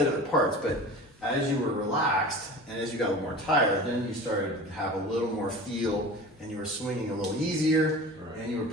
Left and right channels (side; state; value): both; normal; correlation 0.36